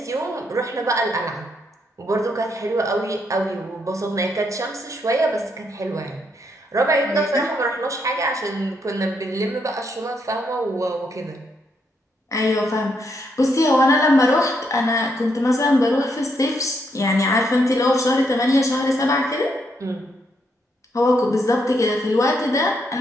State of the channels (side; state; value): both; normal; correlation 0.76